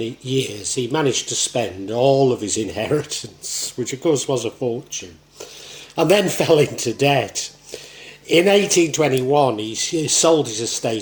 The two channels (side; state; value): both; identical; correlation 1.00